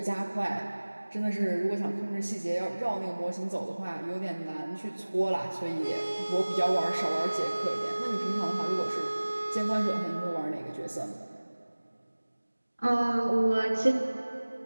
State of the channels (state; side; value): inverted; both; correlation -1.00